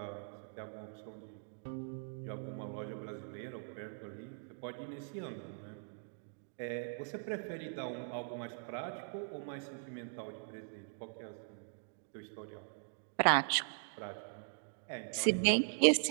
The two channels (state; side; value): silent; left; digital silence